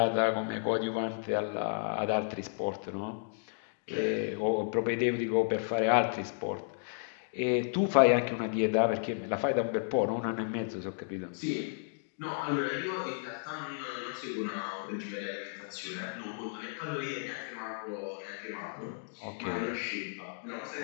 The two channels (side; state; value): right; silent; digital silence